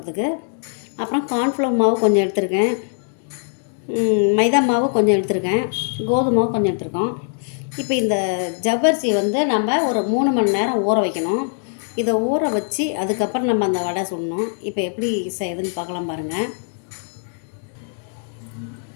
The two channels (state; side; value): silent; right; digital silence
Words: அப்புறம் கார்ன்ஃப்ளவர் மாவு கொஞ்சம் எடுத்திருக்கேன். மைதா மாவு கொஞ்சம் எடுத்திருக்கேன். கோதுமை மாவு கொஞ்சம் எடுத்திருக்கோம். இப்போ இந்த ஜவ்வரிசி நம்ம ஒரு 3 மணி நேரம் ஊற வைக்கணும். இதை ஊற வச்சு அதுக்கப்புறம் நம்ம அந்த வடை சுடணும். இப்போ எப்படி செய்யுதுன்னு பார்க்கலாம் பாருங்கள்.